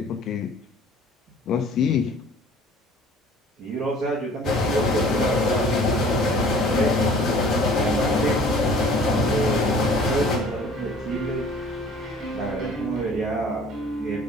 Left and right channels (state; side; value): normal; both; correlation 0.50